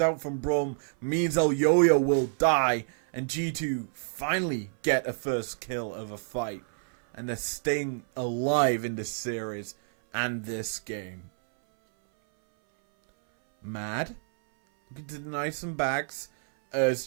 out from Brum. Means Elyoya will die. And G2 finally get a first kill of a fight. And they're staying alive in this series and this game. Mad. Looking to deny some backs. As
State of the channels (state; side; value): silent; left; 58 dB below the other